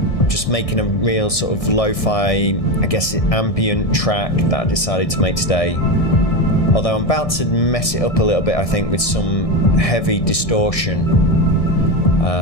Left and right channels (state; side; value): late; right; 1.6 ms